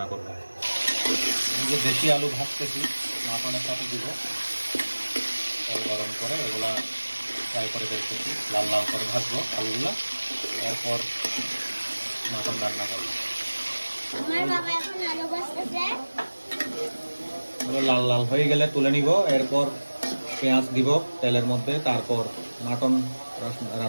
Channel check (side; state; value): both; inverted; correlation -1.00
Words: করবো। যে দেশি আলু ভাজতেছি, মাটনের সাথে দিব, তেল গরম করে এগুলা ফ্রাই করে ফেলতেছি, লাল লাল করে ভাজবো আলুগুলো, এরপর মাটন রান্না করবো। লাল লাল হয়ে গেলে তুলে নিব, এরপর পেঁয়াজ দিব তেলের মধ্যে, তারপর মাটন